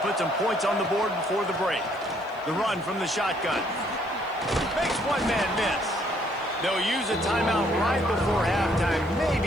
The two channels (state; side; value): noise; left; hiss, 29 dB below the sound